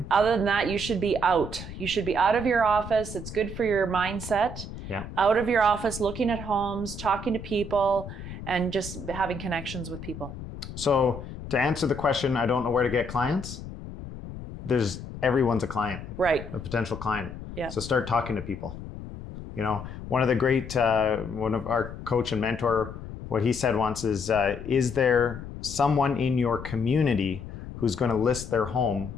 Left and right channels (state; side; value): noise; left; rumble, 11 dB below the sound